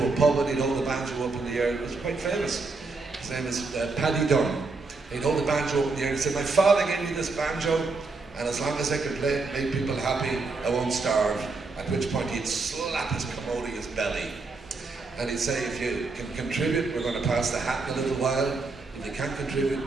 a pub and he'd hold the banjo up in the air. It was quite famous. His name is Paddy Dunn. He'd hold the banjo up in the air and he'd say, "My father gave me this banjo, and as long as I can play it, make people happy, I won't starve." At which point he'd slap his commodious belly. And he'd say, "If you can contribute, we're going to pass the hat in a little while. If you can't contribute,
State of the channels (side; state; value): left; quieter; 3.9 dB